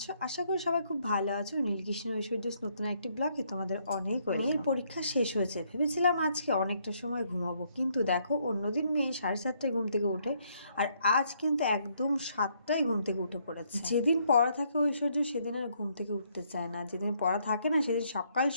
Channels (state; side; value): inverted; both; correlation -0.71